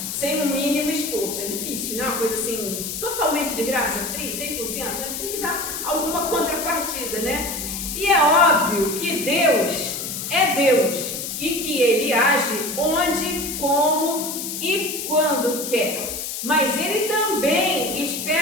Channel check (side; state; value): left; noise; hiss, 5 dB below the sound